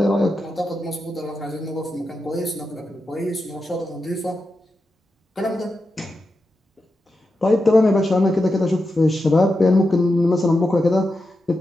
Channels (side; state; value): both; normal; correlation 0.89